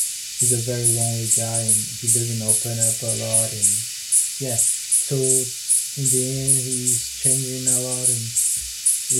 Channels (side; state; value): both; identical; correlation 1.00